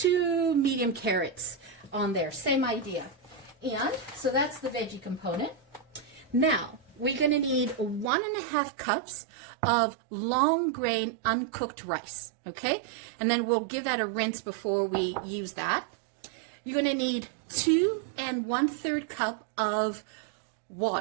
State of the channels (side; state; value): left; drops out; at 8.1 s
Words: medium carrots on there, same idea. And so that's the veggie component. Now we're going to need 1.5 cups of long grain uncooked rice, okay? And then we'll give that a rinse before we use that. You're going to need 2 1/3 cup of